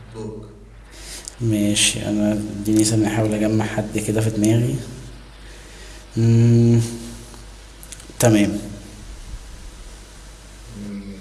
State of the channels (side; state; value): both; identical; correlation 1.00